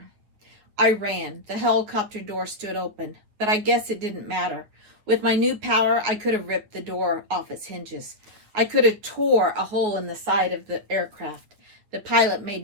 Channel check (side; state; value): left; late; 9.8 ms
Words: I ran. The helicopter door stood open, but I guess it didn't matter. With my new power, I could have ripped the door off its hinges. I could have tore a hole in the side of the aircraft. The pilot